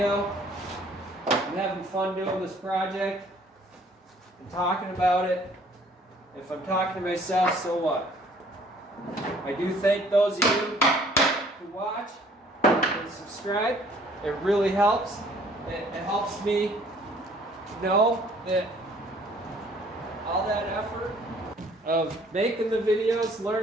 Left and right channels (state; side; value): normal; both; correlation 0.58